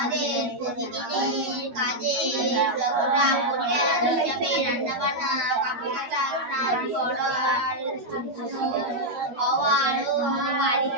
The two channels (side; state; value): left; late; 12 ms